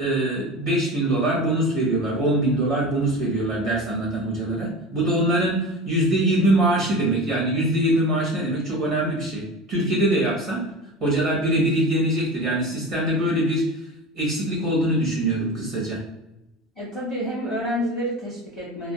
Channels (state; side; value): normal; both; correlation 0.31